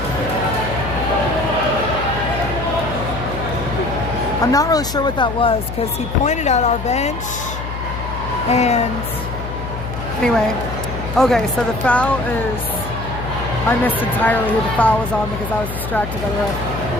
I'm not really sure what that was because he pointed at our bench and anyway, okay, so the foul is, I missed entirely who the foul was on because I was distracted by the ref.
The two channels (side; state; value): left; noise; hum, 7 dB below the sound